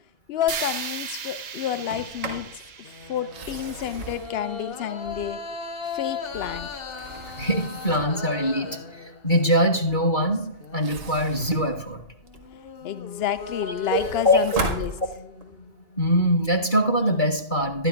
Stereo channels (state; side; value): late; right; 2.3 ms